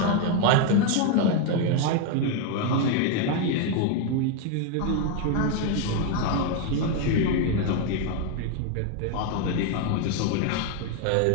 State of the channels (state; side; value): different; both; correlation 0.01